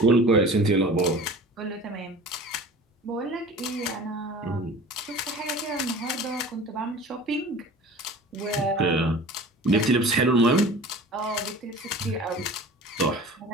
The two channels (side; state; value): both; normal; correlation 0.41